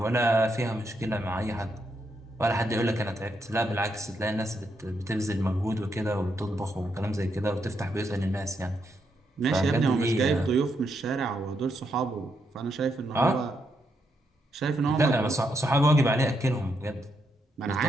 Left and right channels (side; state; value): both; normal; correlation 0.80